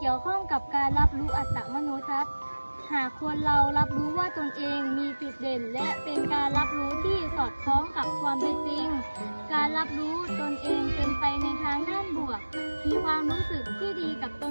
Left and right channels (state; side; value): inverted; both; correlation -1.00